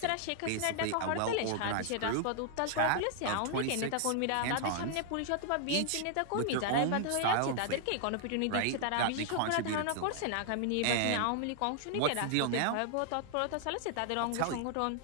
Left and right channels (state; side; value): different; both; correlation 0.00